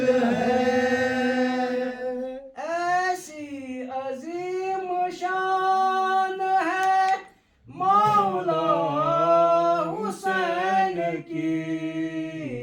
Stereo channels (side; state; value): both; identical; correlation 1.00